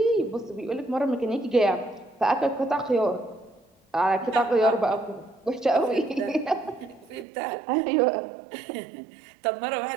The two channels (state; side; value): drops out; left; at 7.2 s